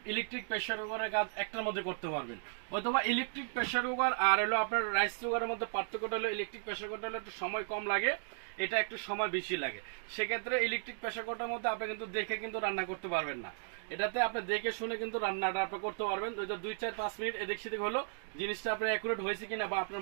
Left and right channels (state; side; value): silent; left; digital silence